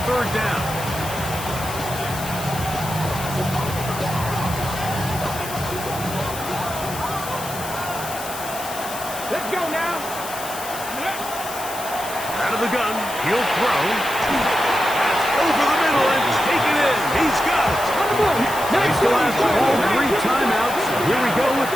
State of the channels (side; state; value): left; noise; hiss, 10 dB below the sound